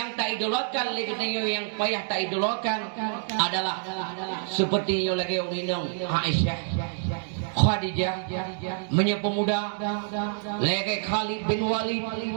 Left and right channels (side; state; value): left; silent; digital silence